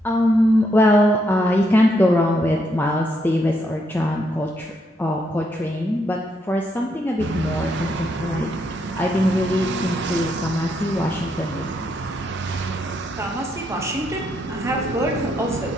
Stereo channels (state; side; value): normal; both; correlation 0.76